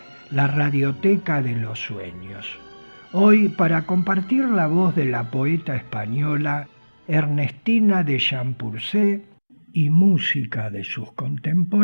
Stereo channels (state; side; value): inverted; both; correlation -1.00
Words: la Radioteca de los Sueños. Hoy para compartir la voz de la poeta española Ernestina de Champurcé y música de sus